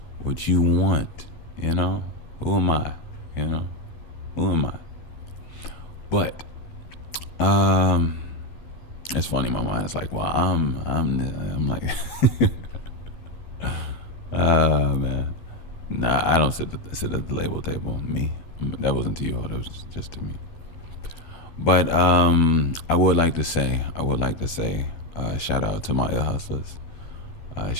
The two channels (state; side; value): late; right; 12 ms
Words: what you want, Who am I? Who am I? But it's funny. My mind is like, well, I'm like, man. Nah, I don't sit at the label table. Me, that wasn't to you all. That was just to me. But I would like to say, shout out to my ear hustlers.